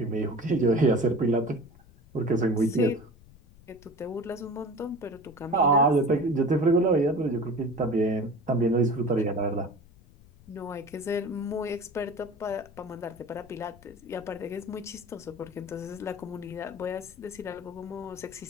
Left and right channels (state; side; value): noise; left; rumble, 24 dB below the sound